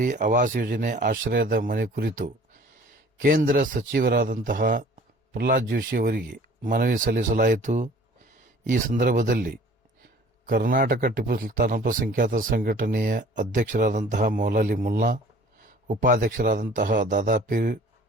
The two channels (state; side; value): normal; both; correlation 0.50